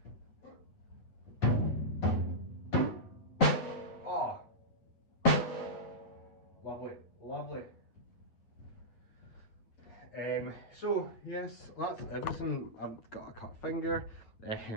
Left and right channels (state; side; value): late; right; 8.8 ms